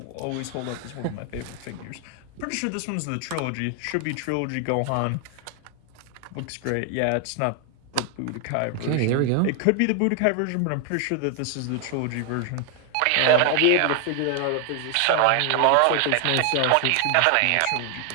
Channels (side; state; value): both; different; correlation 0.00